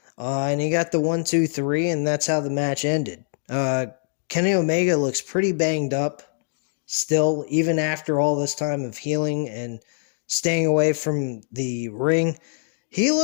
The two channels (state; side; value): silent; right; digital silence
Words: And he got the 1-2-3, and that's how the match ended. Kenny Omega looks pretty banged up still, even after all this time of healing and staying away from the ring. He